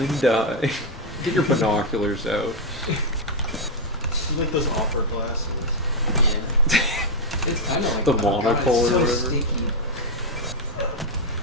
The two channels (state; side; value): normal; both; correlation 0.01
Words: get your binoculars out. You like those opera glasses. Yeah. It's kind of like The oh God, monocle it's or so whatever. sticky.